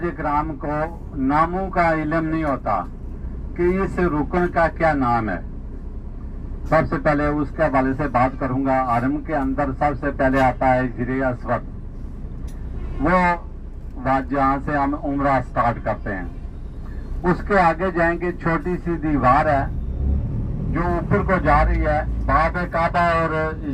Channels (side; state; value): both; identical; correlation 1.00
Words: इकराम को नामों का इल्म नहीं होता कि इस रुकन का क्या नाम है। सबसे पहले उसके हवाले से बात करूंगा। हरम के अंदर सबसे पहले आता है हिजरे अस्वद, वो जहाँ से हम उम्रा स्टार्ट करते हैं। उसके आगे जाएंगे, छोटी सी दीवार है जो ऊपर को जा रही है बाब काबा और